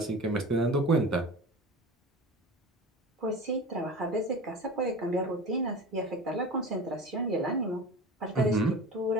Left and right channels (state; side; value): normal; both; correlation 0.33